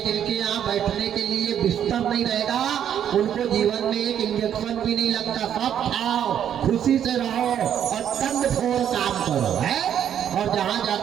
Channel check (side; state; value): left; quieter; 9.6 dB